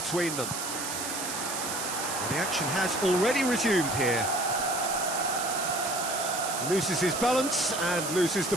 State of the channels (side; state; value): right; noise; hiss, 4 dB below the sound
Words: them. Well, the action has already resumed here. Loses his balance and loses